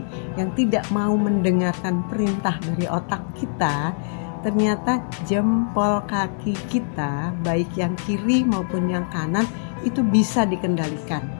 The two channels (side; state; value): right; silent; 64 dB below the other